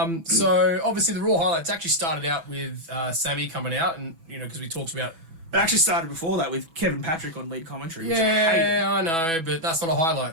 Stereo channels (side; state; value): left; late; 6.1 ms